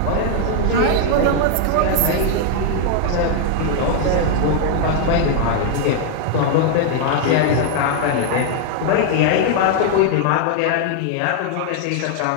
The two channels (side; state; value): both; different; correlation 0.00